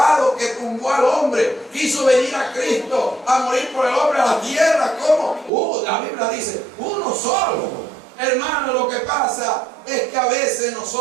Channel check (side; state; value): left; drops out; at 5.5 s